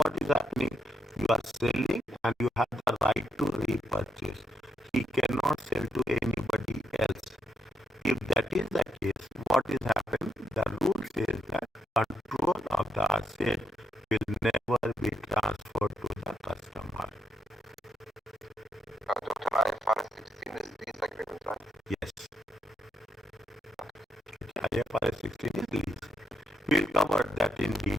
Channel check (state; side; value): normal; both; correlation 0.81